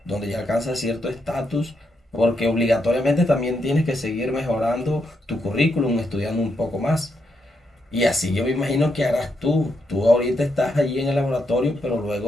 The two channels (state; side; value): normal; both; correlation 0.80